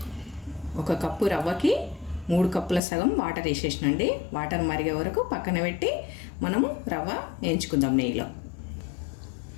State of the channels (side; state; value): right; drops out; at 2.8 s